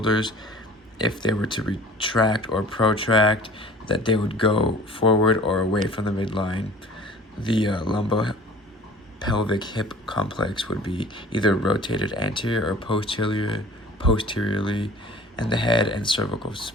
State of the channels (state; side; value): normal; both; correlation 0.46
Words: if they were to retract or protract, that they would go forward or away from the midline. The lumbopelvic hip complex would be either rotated anterior or posteriorly, and the head and cervical